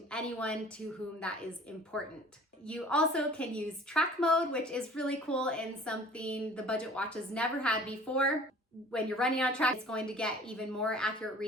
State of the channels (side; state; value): both; normal; correlation 0.48